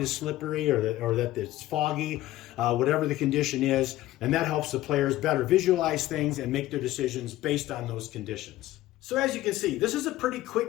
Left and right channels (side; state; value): right; quieter; 15.6 dB